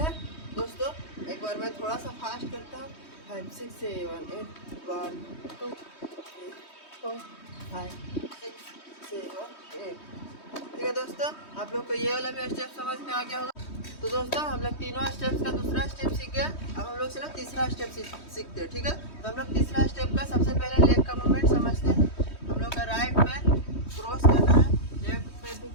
दोस्तों एक बार मैं थोड़ा सा फास्ट करता हूँ 5 6 7 8 1 2 3 4 5 6 7 8, ठीक है। दोस्तों आप लोग को ये वाला भी स्टेप समझ में आ गया होगा। तो दोस्तों हम लोग तीनों स्टेप्स का दूसरा स्टेप सीख गए। अब हम लोग चलो तीसरा स्टेप सीखते हैं, ठीक है। तो हम लोग तीसरा स्टेप का सबसे पहले लेग का मूवमेंट समझते हैं। हम लोग का राइट पैर क्रॉस करना है, लेफ्ट पैर भी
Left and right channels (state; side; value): late; right; 3.2 ms